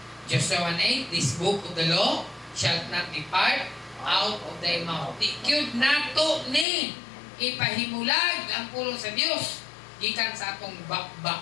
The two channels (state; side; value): drops out; right; at 6.7 s